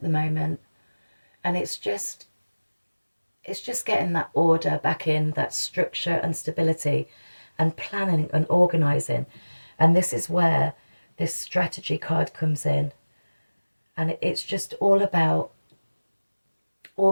the moment, and it's just getting that order back in, that structure and stability, and planning and organizing. And this is where this strategy card comes in, and it's just all about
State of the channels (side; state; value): both; inverted; correlation -1.00